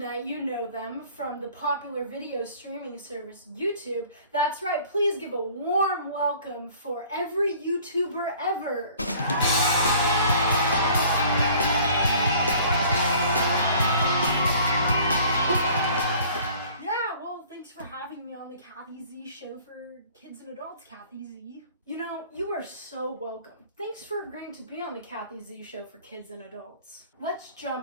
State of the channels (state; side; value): inverted; both; correlation -0.52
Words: you know them from the popular video streaming service YouTube. That's right, please give a warm welcome for every YouTuber ever. Thanks for having me on the Kathy Z Show for kids and adults, Kathy Z. You know, you are so welcome. Thanks for agreeing to be on the Kathy Z Show for kids and adults. Let's